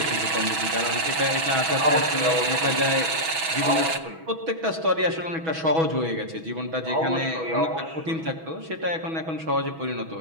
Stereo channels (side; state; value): left; late; 6.2 ms